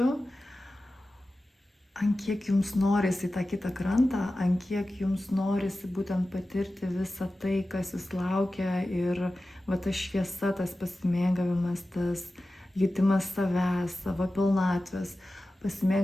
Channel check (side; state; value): both; normal; correlation 0.95